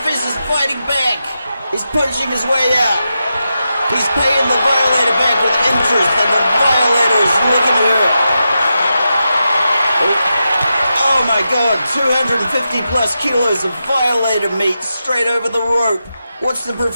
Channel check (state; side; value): inverted; both; correlation -0.88